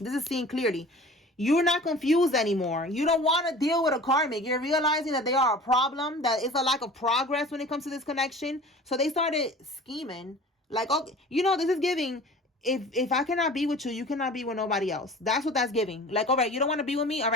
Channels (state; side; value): normal; both; correlation 0.42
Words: is seeing clearly. You're not confused anymore. You don't want to deal with a karmic. You're realizing that they are a problem, that it's a lack of progress when it comes to this connection. So they started scheming. Like, okay, you know, this is giving... If I cannot be with you, you cannot be with nobody else. That's what that's giving. Like, all right, you don't want to be with me? All